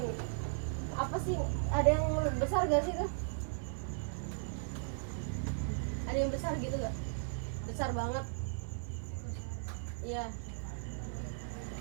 apa sih, ada yang besar gak sih tuh? Ada yang besar gitu gak? Besar banget. Iya.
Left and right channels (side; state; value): left; silent; 53 dB below the other